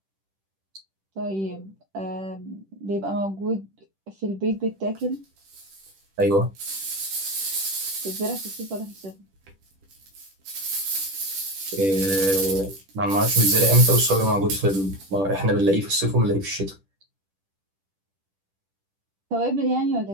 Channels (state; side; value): late; left; 10 ms